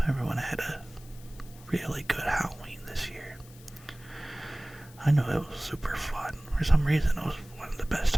everyone had a really good Halloween this year. I know it was super fun. For some reason, it was one of the best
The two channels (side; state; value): left; noise; hiss, 22 dB below the sound